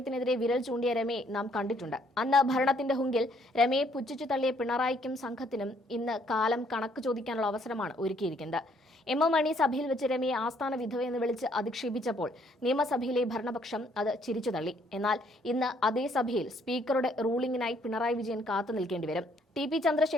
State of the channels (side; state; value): both; normal; correlation 0.66